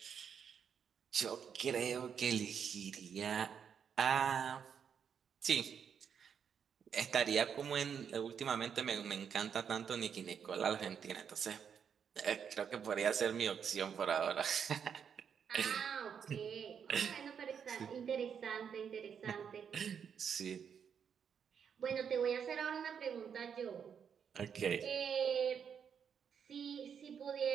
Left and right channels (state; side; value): quieter; left; 7.4 dB